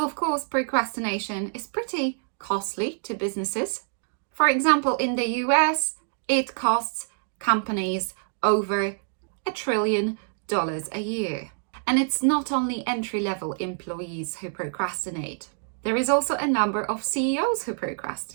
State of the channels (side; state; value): left; silent; digital silence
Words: of course, procrastination is pretty costly to businesses. For example, in the US, it costs companies over $1 trillion a year. And it's not only entry-level employees who procrastinate. There is also a number of CEOs who